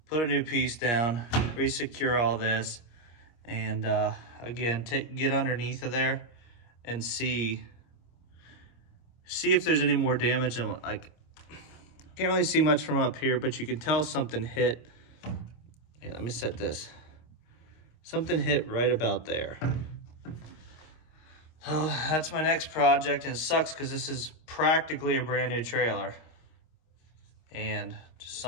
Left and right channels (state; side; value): late; right; 26 ms